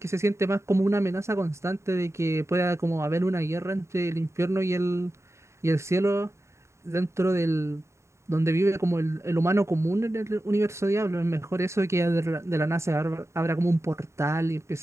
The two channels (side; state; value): left; late; 0.14 ms